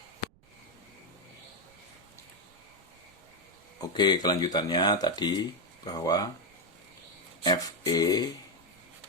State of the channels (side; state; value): right; noise; rumble, 29 dB below the sound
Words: Oke, kelanjutannya tadi bahwa Fe